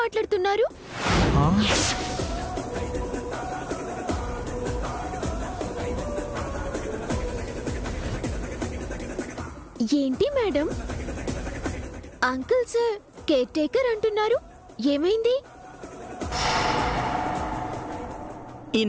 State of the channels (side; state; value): both; identical; correlation 1.00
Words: ఏంటి madam, uncle sir care taker అంటున్నారు, ఏమైంది?